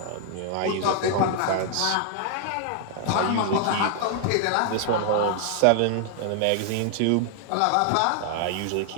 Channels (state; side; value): different; both; correlation 0.00